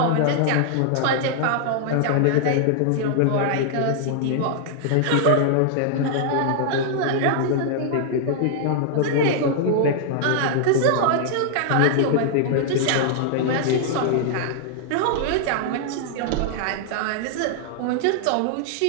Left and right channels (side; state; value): both; different; correlation -0.01